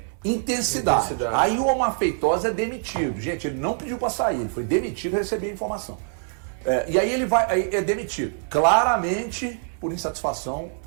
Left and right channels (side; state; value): left; silent; 62 dB below the other